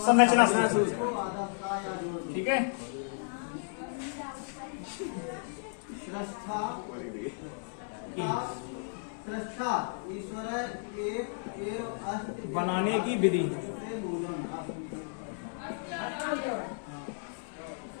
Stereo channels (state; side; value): silent; right; digital silence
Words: संरचना सूत्र। ठीक है, बनाने की विधि।